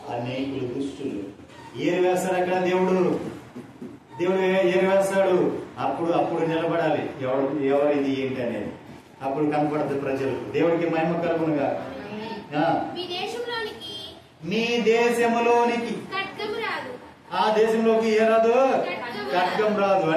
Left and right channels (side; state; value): both; identical; correlation 1.00